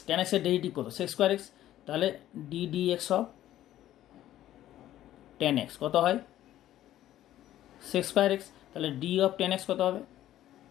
টেন এক্সের ডেরিভেটিভ কত, সেক্স স্কোয়ার এক্স, তাহলে D D x of tan x কত হয়, সেক্স স্কোয়ার এক্স, তাহলে ডি অফ টেন এক্স কত হবে,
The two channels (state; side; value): quieter; right; 13.1 dB